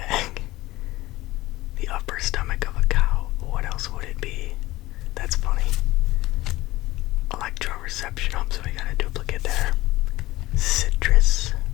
The upper stomach of a cow. What else would it be? That's funny. Electroreception. Oh, so we got a duplicate there. Citrus.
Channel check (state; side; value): quieter; right; 17.8 dB